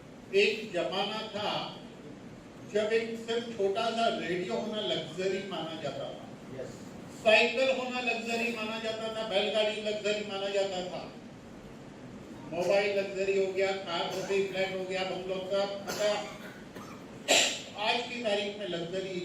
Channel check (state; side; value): identical; both; correlation 1.00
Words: एक जमाना था जब एक सिर्फ छोटा सा रेडियो होना लग्जरी माना जाता था, साइकिल होना लग्जरी माना जाता था, बैलगाड़ी लग्जरी माना जाता था, मोबाइल लग्जरी हो गया, कार हो गई, फ्लैट हो गया, बंगलो सब। आज की तारीख में लग्जरी